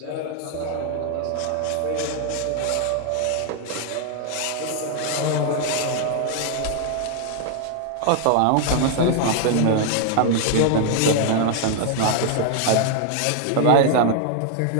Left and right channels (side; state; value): both; different; correlation 0.00